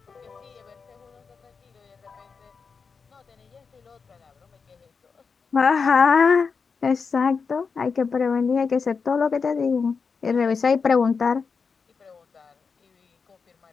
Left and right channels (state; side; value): quieter; right; 5.3 dB